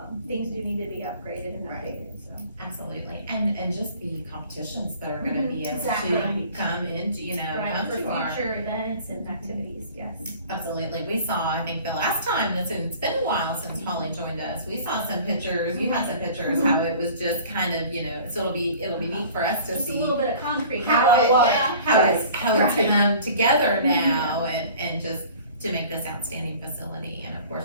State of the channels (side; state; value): both; inverted; correlation -0.46